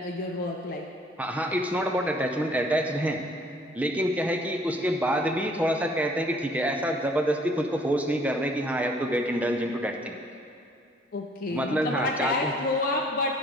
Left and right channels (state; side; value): normal; both; correlation 0.59